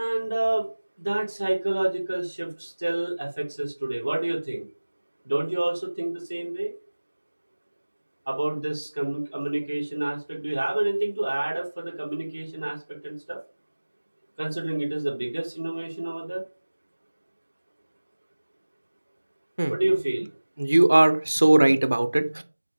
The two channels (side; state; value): both; inverted; correlation -1.00